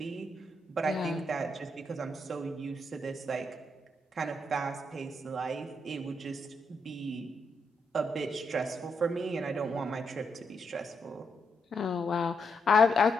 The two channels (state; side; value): normal; both; correlation 0.80